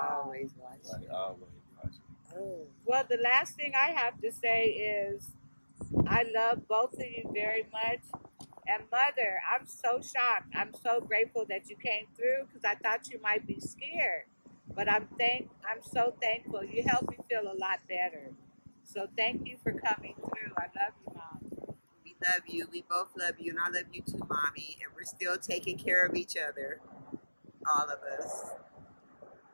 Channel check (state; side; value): inverted; both; correlation -1.00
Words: Always watching. like always watching. Oh. Well, the last thing I have to say is I love both of you very much. And Mother, I'm so shocked. I'm so grateful that you came through because I thought you might be scared. But I'm so thankful. You helped me feel a lot better. So thank you for coming through. I love you, Mom. We love you. We both love you. And I love you too, Mommy. And we're still taking care of each other. All of us.